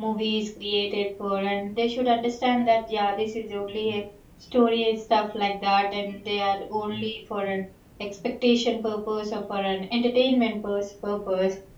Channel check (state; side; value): identical; both; correlation 1.00